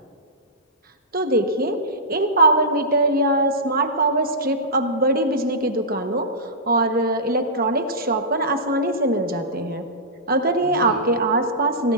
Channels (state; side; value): normal; both; correlation -0.16